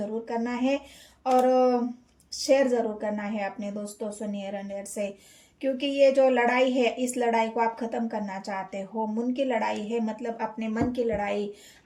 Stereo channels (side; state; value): both; identical; correlation 1.00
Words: करना है, और शेयर ज़रूर करना है अपने दोस्तों से, नियर एंड डियर से, क्योंकि ये जो लड़ाई है इस लड़ाई को आप ख़त्म करना चाहते हो। मन की लड़ाई है, मतलब अपने मन की लड़ाई,